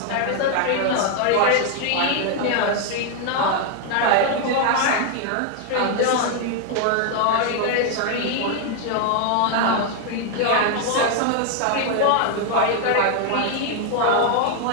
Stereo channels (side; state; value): both; different; correlation 0.00